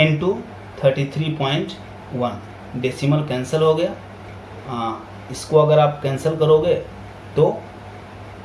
33.1. डेसिमल कैंसिल हो गया. इसको अगर आप कैंसिल करोगे तो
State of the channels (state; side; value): identical; both; correlation 1.00